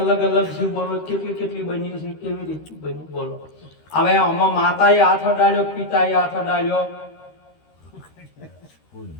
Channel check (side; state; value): right; late; 13 ms